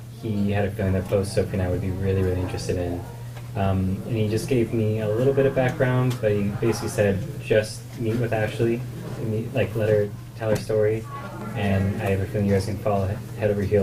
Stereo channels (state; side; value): identical; both; correlation 1.00